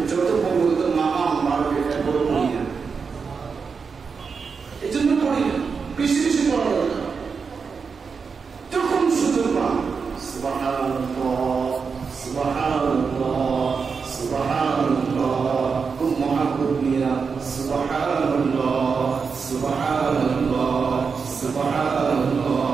যত পড়বো তো মাকাম বাড়বে, এরপরে পড়ি না, এই জন্য পড়ি না, বেশি বেশি পড়া দরকার। যখন সুযোগ পান সুবহানাল্লাহ সুবহানাল্লাহ সুবহানাল্লাহ খুব মহাব্বত নিয়ে সুবহানাল্লাহ সুবহানাল্লাহ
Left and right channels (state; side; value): quieter; left; 5.4 dB